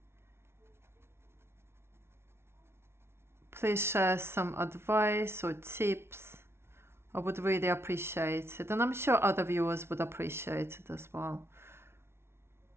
Please share some advice or tips. I would really appreciate it, and I'm sure other viewers would appreciate it as well.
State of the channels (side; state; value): left; late; 0.12 ms